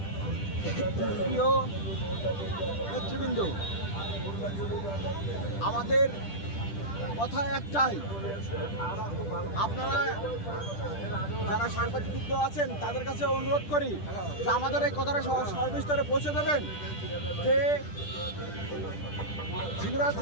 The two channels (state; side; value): late; right; 10 ms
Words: প্রিয় নেতৃবৃন্দ, আমাদের কথা একটাই, আপনারা যারা সাংবাদিক আছেন তাদের কাছে অনুরোধ করি যে আমাদের এই কথাটা সর্বস্তরে পৌঁছে দেবেন যে ঝিনাইদহ